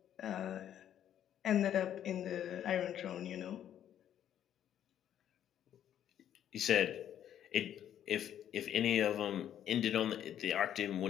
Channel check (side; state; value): right; quieter; 10.4 dB